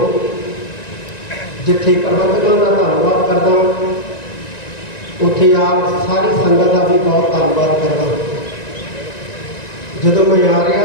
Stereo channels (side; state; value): right; late; 1.9 ms